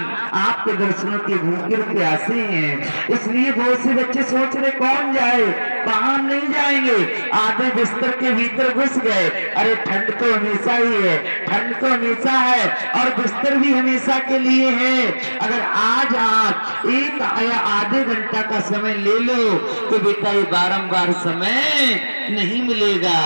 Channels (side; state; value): both; inverted; correlation -1.00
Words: आपके दर्शनों के भूखे प्यासे हैं। इसलिए बहुत से बच्चे सोच रहे कौन जाए, वहां नहीं जाएंगे, आधे बिस्तर के भीतर घुस गए। अरे ठंड तो हमेशा ही है, ठंड तो हमेशा है और बिस्तर भी हमेशा के लिए है। अगर आज आप एक या आधे घंटा का समय ले लो तो बेटा ये बारंबार समय नहीं मिलेगा।